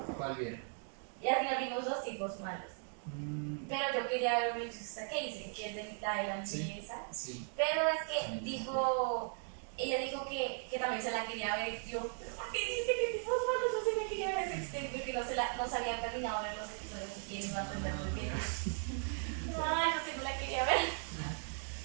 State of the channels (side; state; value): left; silent; 53 dB below the other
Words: ¿Cuál vieron? Y al final vimos dos tipos malos. Pero yo quería ver Manchester que dice que es de la Sí. niñeza. Sí. Pero es que También. ella dijo que también se la quería ver. Yo, ¿pero por qué dijiste que tipos malos? Yo sí me quería ver ese extenso, que no se habían terminado de ver los episodios y que iba a entender muy bien. No, yo sí me la quería ver.